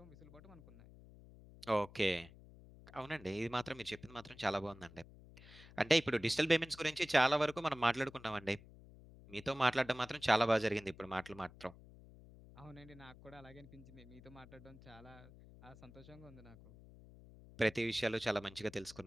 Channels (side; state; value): left; noise; hum, 20 dB below the sound